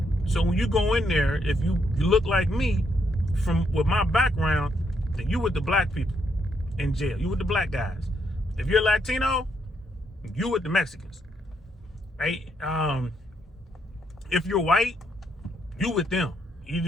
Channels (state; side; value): normal; both; correlation 0.76